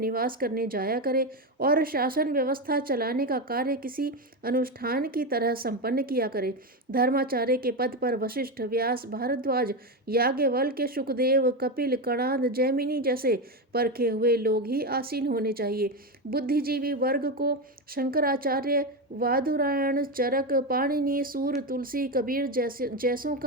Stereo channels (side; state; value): both; normal; correlation 0.13